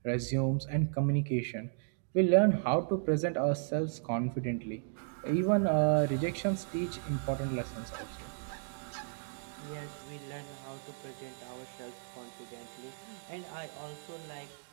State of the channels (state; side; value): silent; left; digital silence